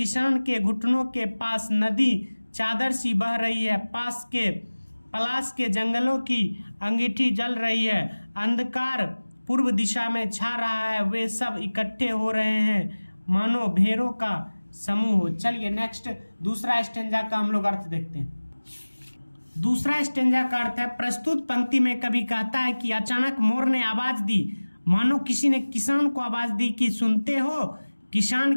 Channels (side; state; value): both; inverted; correlation -1.00